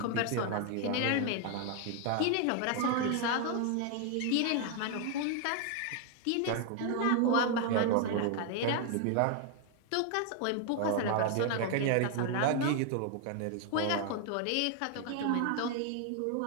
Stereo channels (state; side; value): different; both; correlation 0.00